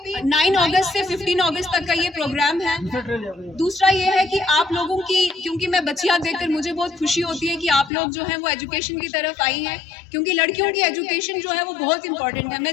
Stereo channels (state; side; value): drops out; right; at 7.9 s